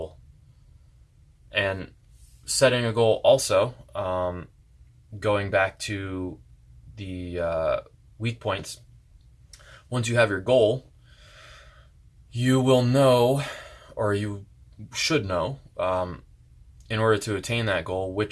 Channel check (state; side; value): identical; both; correlation 1.00